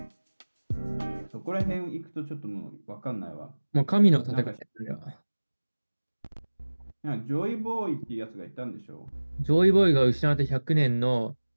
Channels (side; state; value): both; inverted; correlation -1.00